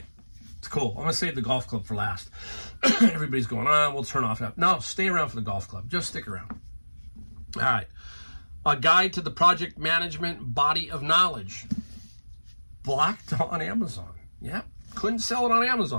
it's cool. I'm going to save the golf club for last. Everybody's going, we'll turn off that. No, stay around for the golf club. Just stick around. All right. A guide to the project management body of knowledge. Blocked on Amazon. Yep. Couldn't sell it on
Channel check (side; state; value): both; inverted; correlation -1.00